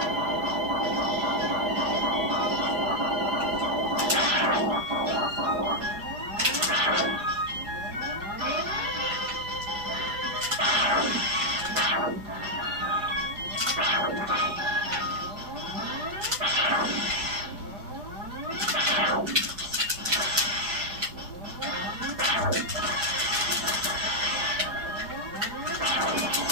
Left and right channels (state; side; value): late; left; 4.7 ms